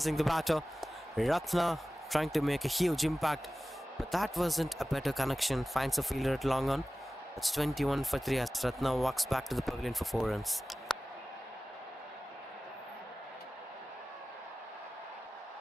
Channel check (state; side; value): normal; both; correlation 0.96